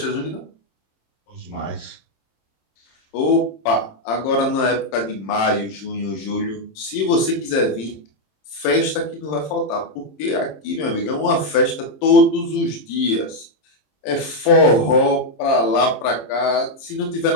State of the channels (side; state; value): right; late; 26 ms